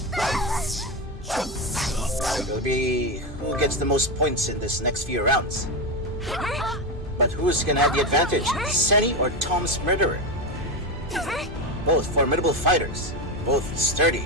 It'll be who gets the most points in this next few rounds. But who's gonna have the advantage? Seni or Tom's Murderer? Both formidable fighters, both sturdy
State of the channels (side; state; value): both; normal; correlation 0.13